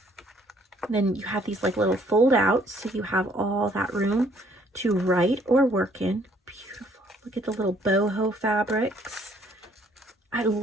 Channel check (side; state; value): both; normal; correlation 0.63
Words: And then you have these like little fold outs, so you have all that room to write or work in. Beautiful. Look at the little boho fabrics. I